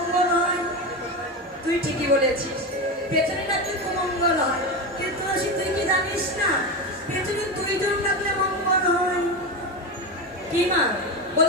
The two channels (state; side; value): normal; both; correlation 0.18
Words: বলেছিস পেছনে ডাকলে মঙ্গল হয়, কিন্তু তুলসী তুই কি জানিস না পেছনে দুইজন ডাকলে মঙ্গল হয়? কি মা